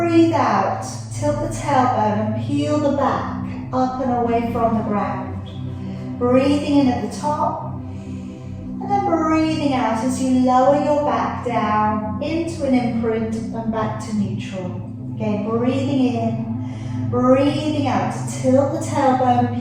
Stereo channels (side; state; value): both; identical; correlation 1.00